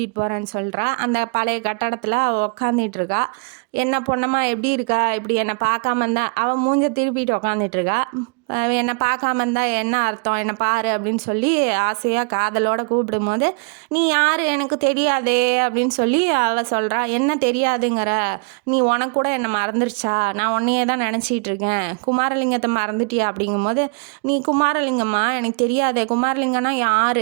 போகிறேன்னு சொல்கிறா. அந்த பழைய கட்டடத்தில் உக்காந்துட்டு இருக்கா. என்ன பொண்ணம்மா எப்படி இருக்கா, இப்படி என்னை பார்க்காம இருந்தா, அவன் மூஞ்ச திருப்பிட்டு உக்காந்துட்டு இருக்கா. என்னை பார்க்காம இருந்தா என்ன அர்த்தம், என்னை பாரு அப்படின்னு சொல்லி ஆசையாக காதலோடு கூப்பிடும் போது நீ யார் எனக்கு தெரியாதே அப்படின்னு சொல்லி அவள் சொல்கிறா. என்ன தெரியாதுங்கிற, நீ உனக்கு கூட என்னை மறந்துருச்சா, நான் உன்னையே தான் நினச்சிட்டு இருக்கேன், குமாரலிங்கத்தை மறந்துட்டியா அப்படிங்கும் போது நீ குமாரலிங்கம்மா எனக்கு தெரியாதே, குமாரலிங்கம்னா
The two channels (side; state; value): left; quieter; 36.3 dB